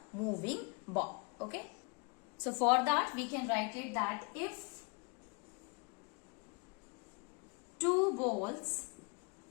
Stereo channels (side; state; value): right; quieter; 32.5 dB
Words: moving ball. Okay, so for that we can write it that if two